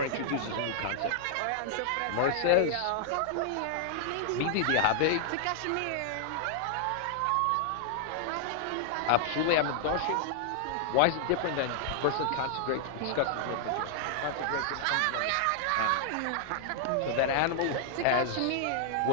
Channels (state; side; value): different; both; correlation -0.01